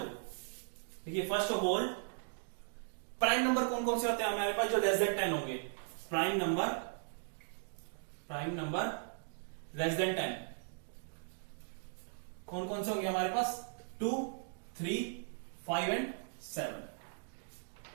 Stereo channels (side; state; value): left; silent; digital silence